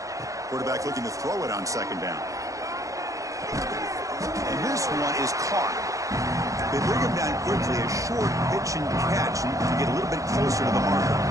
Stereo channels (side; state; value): left; late; 0.16 ms